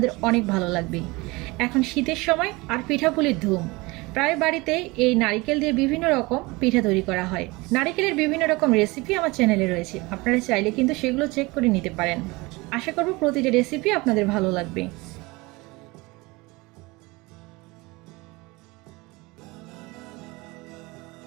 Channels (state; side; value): quieter; left; 23.7 dB